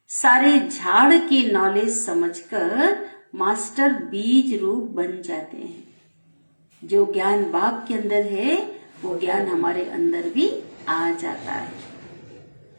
सारे झाड़ की नॉलेज समझकर मास्टर बीज रूप बन जाते हैं। जो ज्ञान बाप के अंदर है वो ज्ञान हमारे अंदर भी आ जाता है,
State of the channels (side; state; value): both; inverted; correlation -1.00